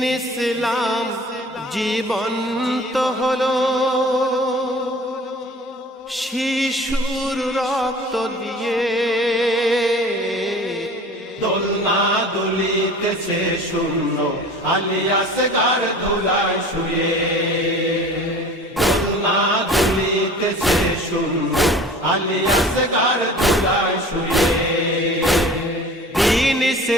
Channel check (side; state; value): both; normal; correlation 0.43